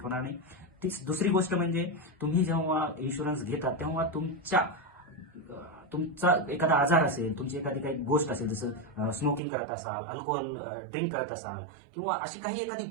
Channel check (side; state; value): left; drops out; at 9.4 s